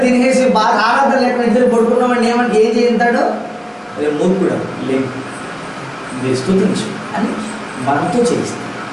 తినేసి బాగా ఆరాధన లేకుండా ఇద్దరు పడుకున్నామని ఏం చేస్తాడు? రేపు మూర్ఖుడు లేదు, మీరు స్తుతించు అని మనతో చేయిస్తాడు.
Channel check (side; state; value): both; identical; correlation 1.00